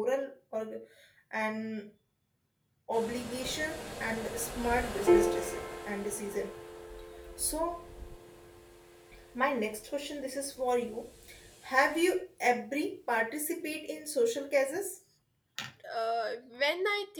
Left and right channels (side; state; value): both; identical; correlation 1.00